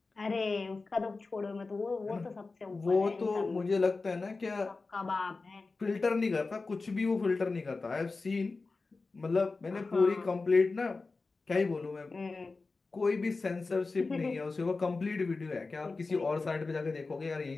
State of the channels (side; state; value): right; quieter; 3.9 dB